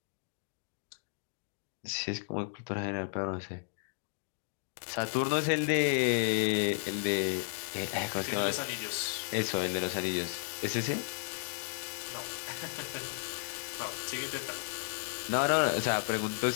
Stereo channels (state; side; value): silent; right; digital silence